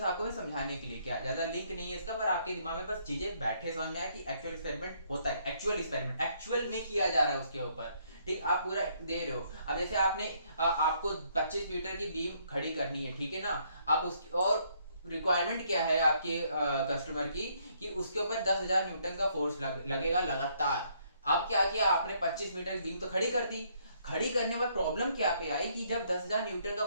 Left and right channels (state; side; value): inverted; both; correlation -0.69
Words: आपको मैं समझाने के लिए, क्या ज्यादा लिंक नहीं है इसका, पर आपके दिमाग में बस चीजें बैठे समझ में आया कि एक्चुअल एक्सपेरिमेंट होता है, एक्चुअल एक्सपेरिमेंट एक्चुअल में किया जा रहा है उसके ऊपर, ठीक। आप पूरा दे रहे हो। अब जैसे आपने आपको 25 मीटर की बीम खड़ी करनी है, ठीक है ना। आप उसकी और रिक्वायरमेंट क्या है आपके कस्टमर की कि उसके ऊपर 10,000 न्यूटन का फोर्स लगेगा लगातार। अब क्या किया आपने, 25 मीटर की बीम तो खड़ी कर दी। खड़ी करने में प्रॉब्लम क्या पे आई कि जब 10,000 न्यूटन का